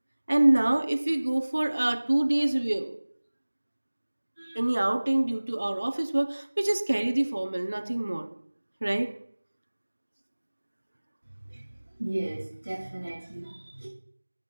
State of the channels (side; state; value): both; inverted; correlation -1.00